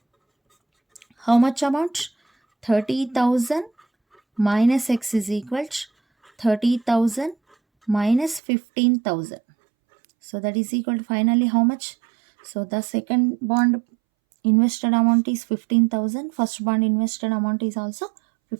how much amount? 30,000 minus x is equal to 30,000 minus 15,000. So that is equal to finally how much? So the second bond invested amount is 15,000. First bond invested amount is also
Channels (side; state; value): left; drops out; at 8.4 s